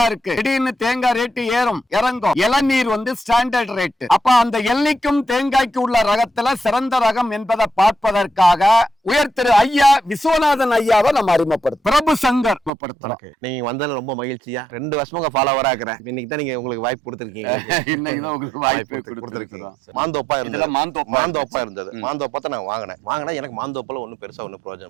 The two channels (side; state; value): left; drops out; at 12.7 s